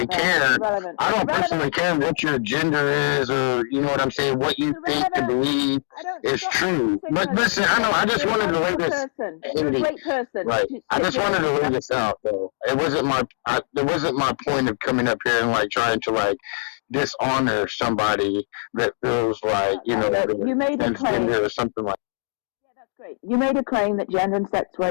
care. I don't personally care what your gender is, or you know what I'm saying, what you think to believe is true. But listen, I just wanted to lay this. You're a great person. Right. I just wanted to lay this out, though. It wasn't my point of coming up here and like trying to like dishonor somebody that feels like you made a claim or something like. Great. You made a claim that gender and sex were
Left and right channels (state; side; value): silent; right; digital silence